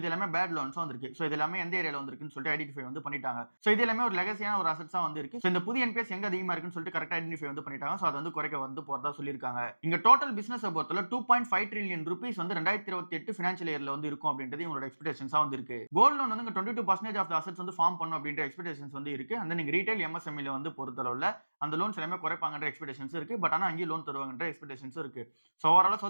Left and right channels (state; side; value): inverted; both; correlation -1.00